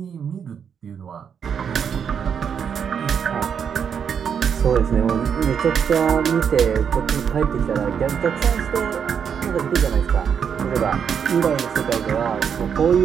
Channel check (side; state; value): left; quieter; 7.4 dB